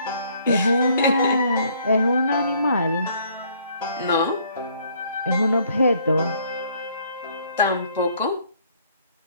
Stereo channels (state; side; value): inverted; both; correlation -0.63